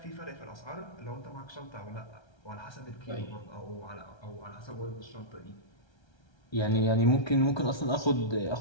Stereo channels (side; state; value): right; late; 1.3 ms